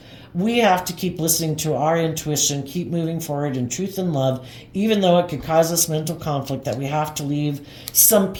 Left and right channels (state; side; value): identical; both; correlation 1.00